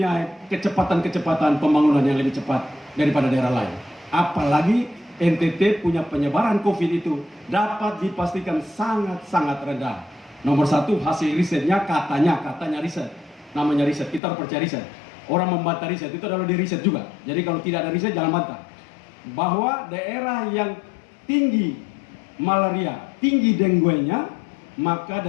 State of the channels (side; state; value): right; drops out; at 14.2 s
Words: kecepatan-kecepatan pembangunan yang lebih cepat daripada daerah lain. Apalagi NTT punya penyebaran COVID itu dapat dipastikan sangat-sangat rendah. Nomor satu, hasil risetnya katanya riset. Namanya riset, kita harus percaya riset. Orang membantah riset, itu adalah di riset juga. Jadi kalau tidak ada riset, jangan bantah. Bahwa daerah yang tinggi malaria, tinggi dengue-nya, maka